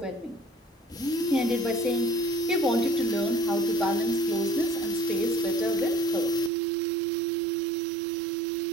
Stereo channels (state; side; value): drops out; left; at 6.5 s